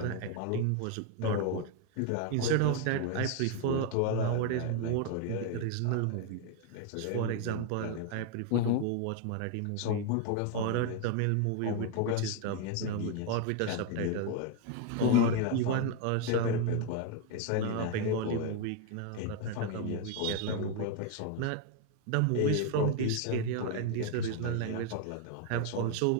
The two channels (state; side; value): different; both; correlation 0.01